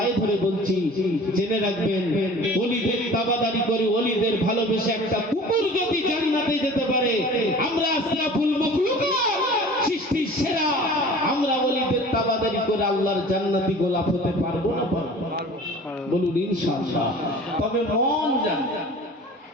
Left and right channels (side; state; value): both; normal; correlation 0.43